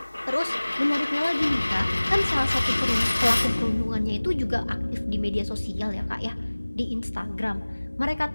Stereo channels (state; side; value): inverted; both; correlation -1.00